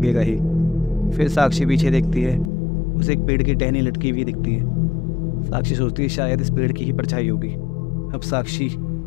ही। फिर साक्षी पीछे देखती है, उसे एक पेड़ की टहनी लटकी हुई दिखती है। साक्षी सोचती है शायद इस पेड़ की ही परछाई होगी। अब साक्षी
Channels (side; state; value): right; drops out; at 2.5 s